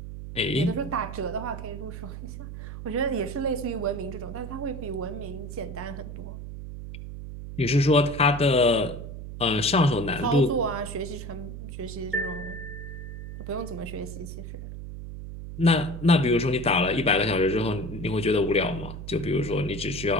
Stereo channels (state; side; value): noise; right; hum, 9 dB below the sound